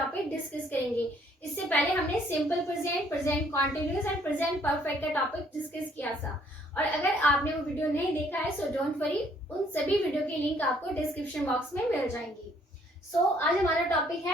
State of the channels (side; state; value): both; normal; correlation 0.64